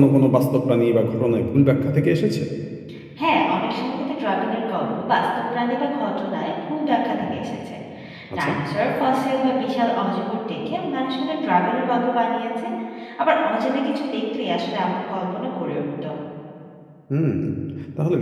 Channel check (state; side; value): identical; both; correlation 1.00